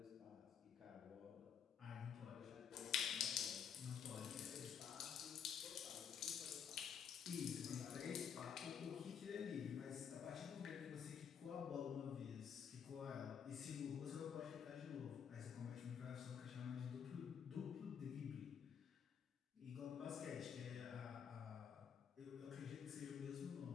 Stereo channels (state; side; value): quieter; right; 7.7 dB